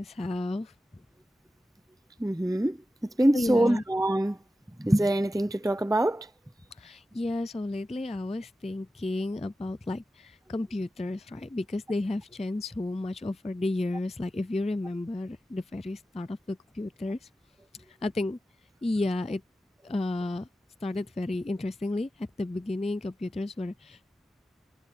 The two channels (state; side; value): normal; both; correlation 0.92